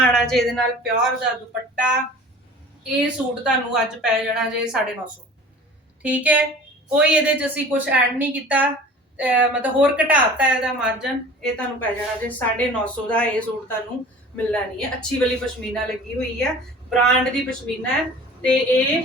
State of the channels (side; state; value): both; normal; correlation 0.43